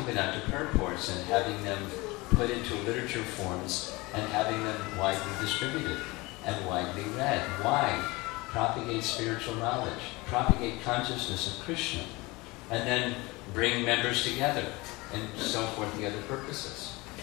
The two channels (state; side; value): quieter; right; 23.1 dB